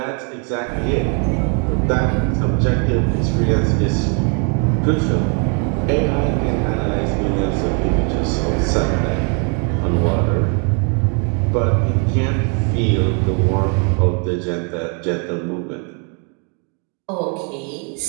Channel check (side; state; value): left; quieter; 38.0 dB